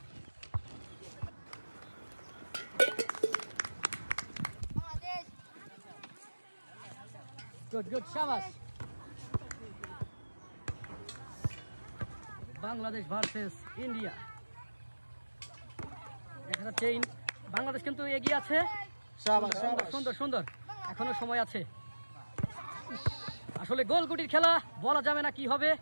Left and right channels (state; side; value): inverted; both; correlation -1.00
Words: Good, good, shabash. Bangladesh versus India. দেখা যাচ্ছে বাংলাদেশ কিন্তু এগিয়ে আছে। শাবাশ সুন্দর শাবাশ সুন্দর সুন্দর, এখনো সময় আছে। আসলে গোলগুটির খেলা, বলা যাবে না কি হবে